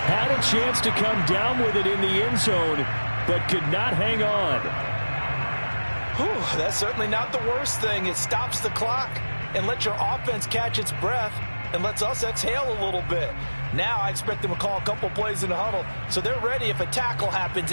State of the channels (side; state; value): both; inverted; correlation -1.00